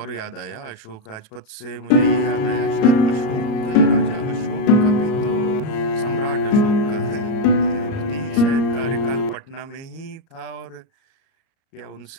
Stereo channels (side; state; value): right; late; 38 ms